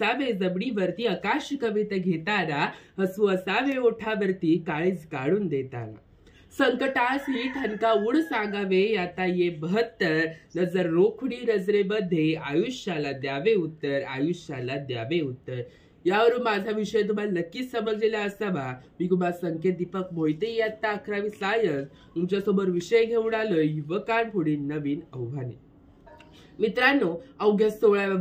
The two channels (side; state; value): both; identical; correlation 1.00